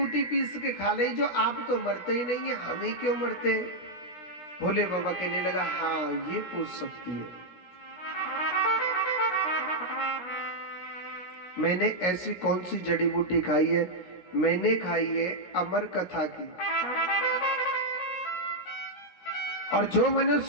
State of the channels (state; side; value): late; right; 16 ms